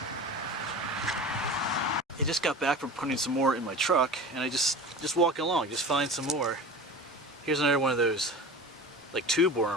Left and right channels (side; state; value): both; normal; correlation 0.35